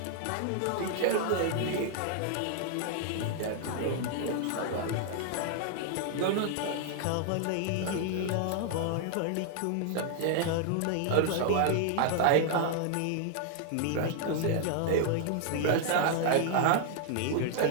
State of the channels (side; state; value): both; different; correlation 0.00